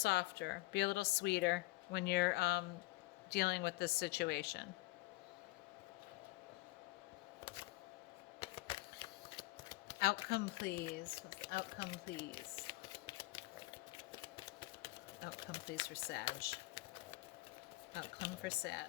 Be a little sweeter when you're dealing with this situation. Outcome, please. Outcome, please. Outcome, please, for Sag. Outcome for Sag.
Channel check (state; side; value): quieter; right; 21.2 dB